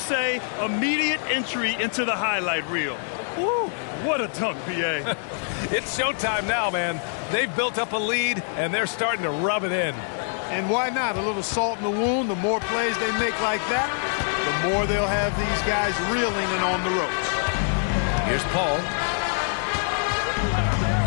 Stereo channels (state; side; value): silent; right; 62 dB below the other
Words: immediate entry into the highlight reel? Woo, what a dunk, B.A. It's showtime now, man. They've built up a lead, and they're starting to rub it in. And why not? A little salt in the wound. The more plays they make like that, the more they'll have these guys reeling and on the ropes. Here's Paul.